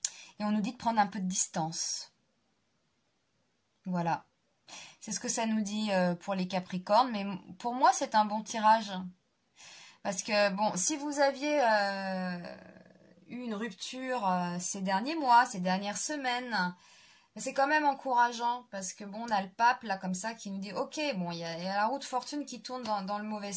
Et on nous dit de prendre un peu de distance. Voilà. C'est ce que ça nous dit pour les Capricornes, mais pour moi, c'est un bon tirage. Parce que, bon, si vous aviez eu une rupture ces derniers mois, ces dernières semaines, c'est quand même encourageant. Parce que, bon, on a le pape, là, comme ça, qui nous dit, ok, bon, il y a la roue de fortune qui tourne dans le mauvais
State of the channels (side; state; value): both; identical; correlation 1.00